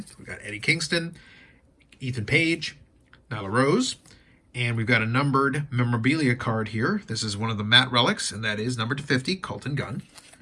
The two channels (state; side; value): identical; both; correlation 1.00